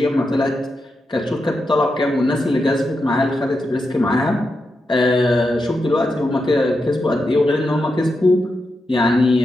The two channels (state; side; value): normal; both; correlation 0.87